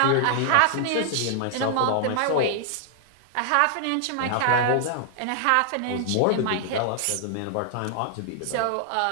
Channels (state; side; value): different; both; correlation -0.01